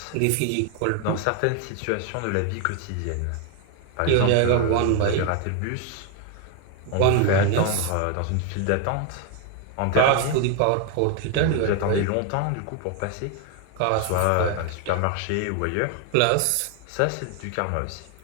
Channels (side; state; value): both; different; correlation 0.01